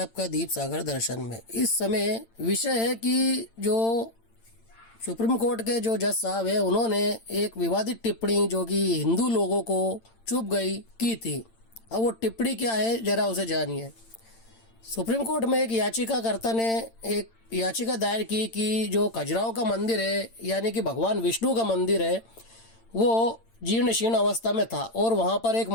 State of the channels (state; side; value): late; right; 8.9 ms